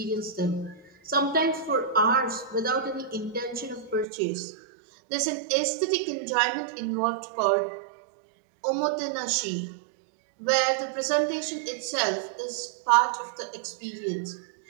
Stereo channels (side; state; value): left; drops out; at 4.0 s